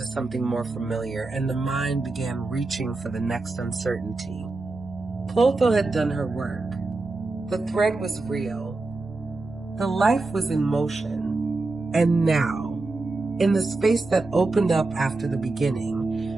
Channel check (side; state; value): left; quieter; 3.3 dB